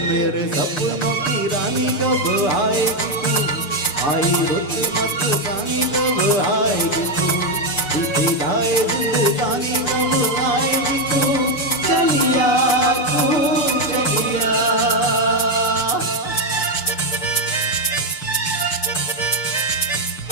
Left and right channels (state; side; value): late; right; 6.7 ms